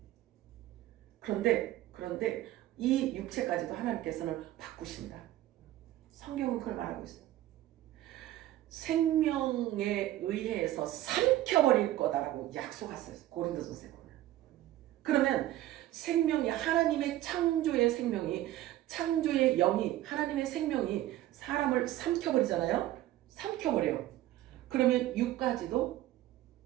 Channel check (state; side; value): quieter; left; 14.6 dB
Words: 그런데 이 육체까지도 하나님께서는 바꾸신다. 성경은 그걸 말하고 있어요. 생명에 의해서 삼켜버릴 거다라고 약속했어요. 고린도전서에 보면. 그러면 생명이 하나님의 창조의 생명이 창조의 영이 하나님의 생명이 사람을 삼켜버리잖아요. 삼켜버려요. 그러면 육까지도